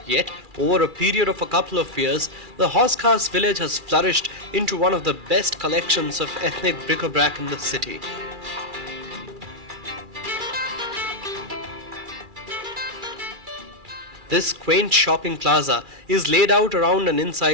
Yet, over a period of a couple of years, the Hauz Khas village has flourished into one of the best collections of ethnic bric-a-brac in the city. This quaint shopping plaza is laid out around and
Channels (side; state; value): left; late; 2.4 ms